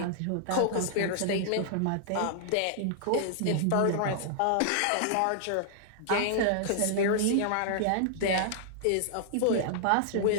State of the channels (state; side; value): different; both; correlation -0.01